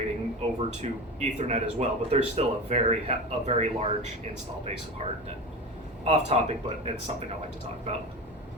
over to Ethernet as well, but there's still a very large install base of HART. Off topic, but it's something I like to talk about.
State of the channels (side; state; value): both; normal; correlation 0.26